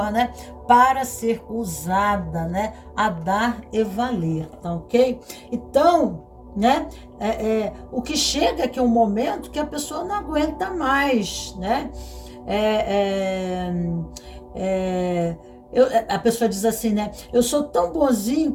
né, para ser usada, né, a dar e valer, tá ok? Então, né, o que chega aqui é um momento que a pessoa não aguenta mais, né? A pessoa diz assim, né? Eu sou tão bonzinho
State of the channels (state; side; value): identical; both; correlation 1.00